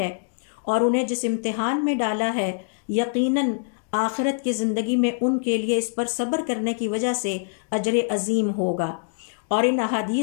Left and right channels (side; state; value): right; silent; digital silence